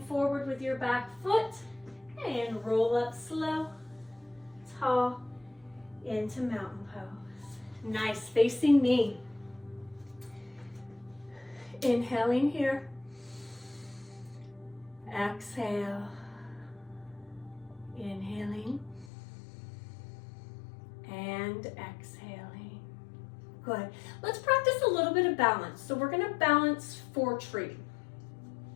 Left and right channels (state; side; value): drops out; right; at 19.1 s